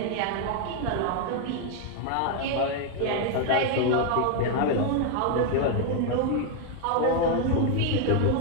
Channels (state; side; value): different; both; correlation 0.01